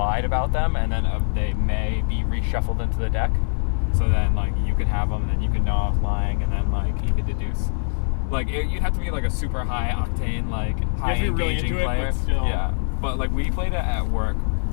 about them, and then they may be reshuffled into the deck. So then, like, you could have them, and then you could know I was lying, and then like you could deduce. Like you'd have to be like a super high octane, like high you have to be really into player. it, but still. Yeah, but like we played it at work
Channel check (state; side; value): silent; right; digital silence